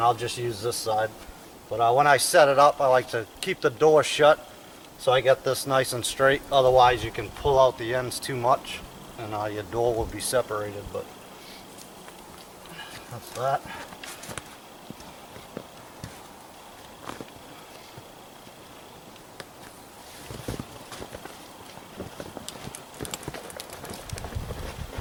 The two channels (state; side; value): identical; both; correlation 1.00